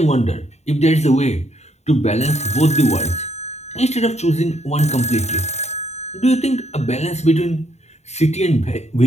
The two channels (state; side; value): late; right; 0.32 ms